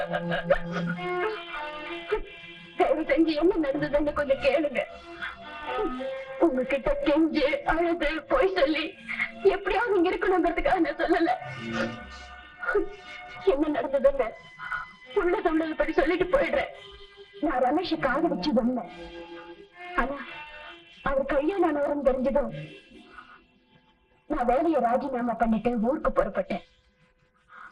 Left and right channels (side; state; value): both; identical; correlation 1.00